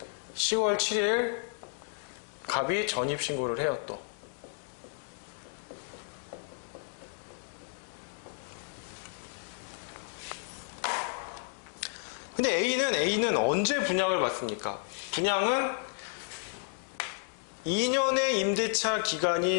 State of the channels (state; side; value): silent; right; digital silence